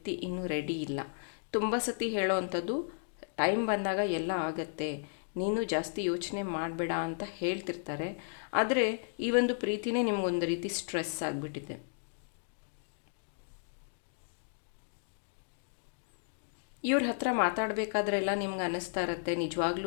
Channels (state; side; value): silent; right; digital silence